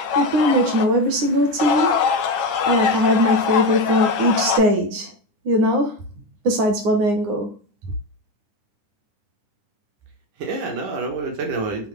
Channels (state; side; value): late; left; 9.7 ms